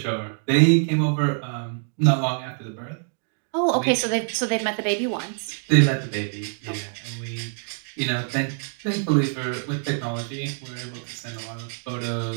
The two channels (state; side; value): silent; left; digital silence